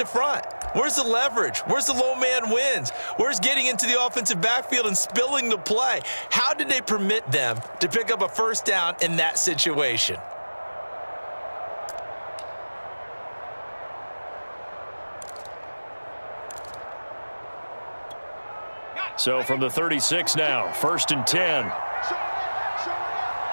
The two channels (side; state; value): both; inverted; correlation -1.00